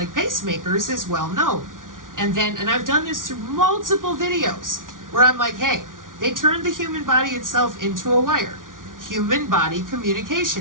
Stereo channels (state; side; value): late; left; 0.89 ms